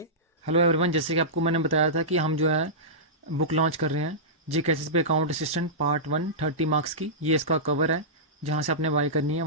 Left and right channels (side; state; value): both; normal; correlation -0.16